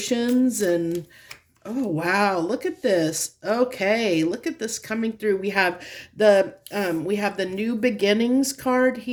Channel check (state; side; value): identical; both; correlation 1.00